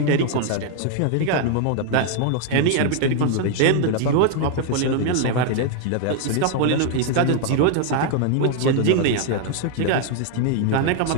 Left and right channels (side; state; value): both; different; correlation 0.00